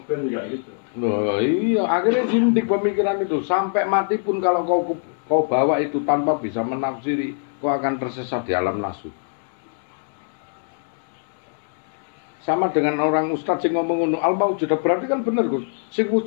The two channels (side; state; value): right; silent; 64 dB below the other